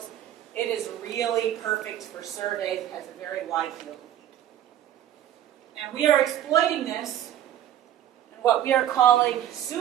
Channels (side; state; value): left; quieter; 11.4 dB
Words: it is really perfect for surveys. It has a very wide field of view. And we are exploiting this in what we are calling